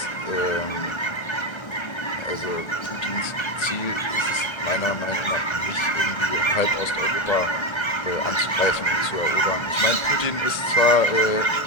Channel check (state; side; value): late; right; 1.3 ms